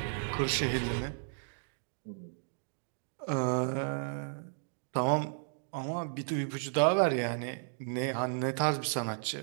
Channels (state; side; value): silent; left; digital silence